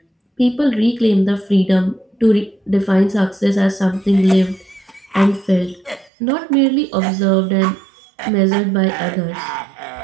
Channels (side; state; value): left; drops out; at 6.1 s